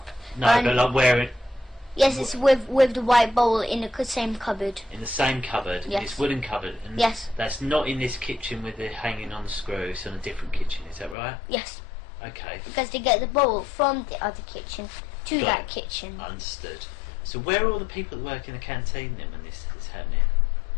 No, And- but like where it Yes, it's with the white bowl in the same cupboard. in the same cupboard. Yes. This wooden cupboard. And Yes. That's not in this kitchen with it hanging on the screw. It's on a different kitchen. Is that right? Yes, Okay. because they get the bowl from the other kitchen to Got that it. kitchen. Understood. So where are all the people that work in the canteen then when this is happening?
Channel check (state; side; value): drops out; right; at 11.2 s